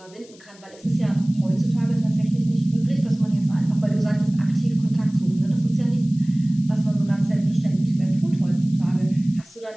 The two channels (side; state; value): left; noise; hiss, 25 dB below the sound